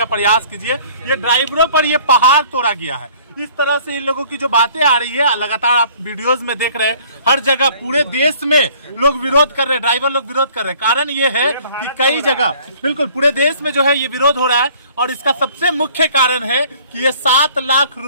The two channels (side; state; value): both; inverted; correlation -0.54